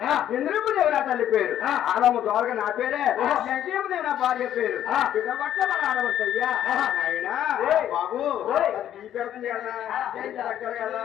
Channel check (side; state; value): right; quieter; 11.1 dB